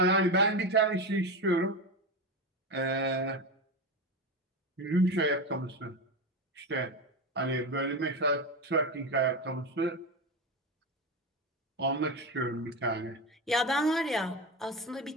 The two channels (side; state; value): both; normal; correlation 0.18